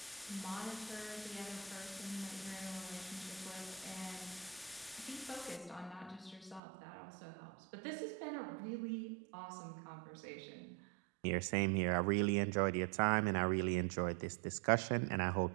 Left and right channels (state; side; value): drops out; left; at 6.6 s